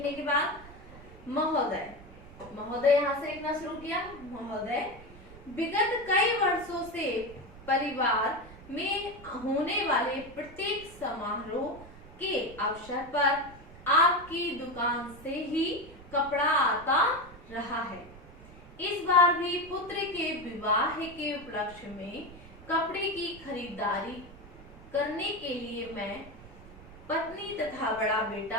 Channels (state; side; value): noise; right; rumble, 19 dB below the sound